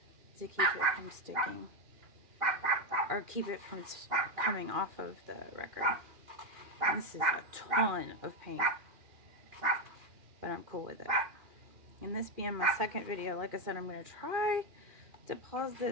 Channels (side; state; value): left; late; 2.4 ms